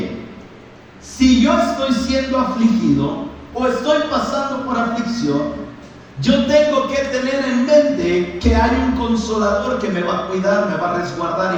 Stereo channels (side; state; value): both; identical; correlation 1.00